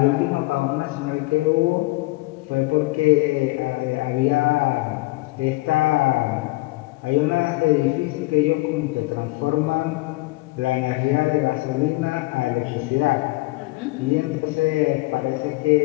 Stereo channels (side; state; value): right; quieter; 22.1 dB